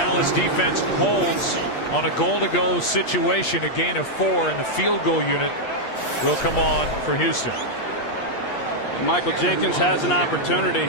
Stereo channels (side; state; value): right; late; 8.5 ms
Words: defense holds on a goal-to-go situation. A gain of 4, and the field goal unit will come on for Houston. Michael Jenkins has an